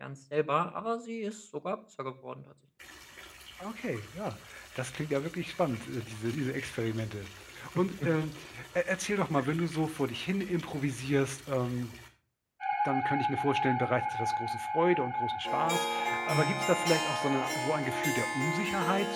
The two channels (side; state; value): both; identical; correlation 1.00